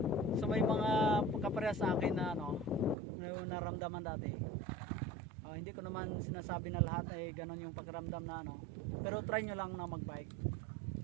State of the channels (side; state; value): left; drops out; at 3.0 s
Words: So may mga kaparehas sa akin na ano, na naramdaman dati. Hindi ko naman sinasabi na lahat ay ganon yung pakiramdam na ano. Pero try nyo lang na mag-bike.